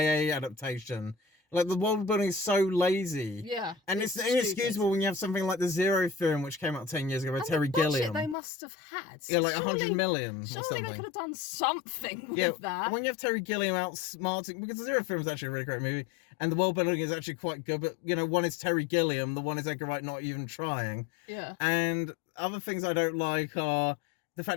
adaptation. Like, the world building is so lazy. Yeah. And it's inexcusable when you have something like The Zero Theorem, which came out 10 years ago by Terry Gilliam. They must have had. Yeah, like 100 million or something. Surely they could have done something with that. When you have Terry Gilliam outsmarting, because The Zero Theorem is actually a really great movie, and the world building is actually quite good, but, one is Terry Gilliam, the one is Edgar Wright not even trying. Yeah. And other things I don't like are the fact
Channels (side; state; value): right; drops out; at 8.3 s